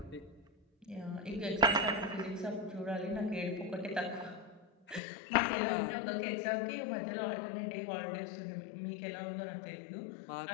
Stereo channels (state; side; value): drops out; right; at 5.0 s